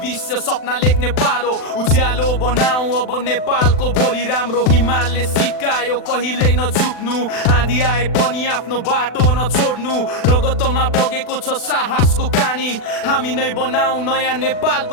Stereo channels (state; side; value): late; right; 40 ms